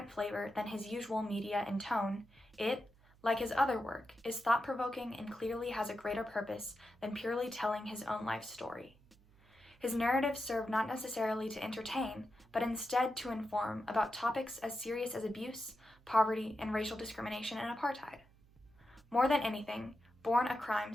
flavor than his usual media and tone, it, like his other work, is thought-provoking and clearly has a greater purpose than purely telling his own life story. His narratives serve not necessarily to entertain, but instead to inform about topics as serious as abuse, poverty, and racial discrimination and apartheid. More than anything, Born a Crime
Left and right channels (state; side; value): noise; right; hum, 28 dB below the sound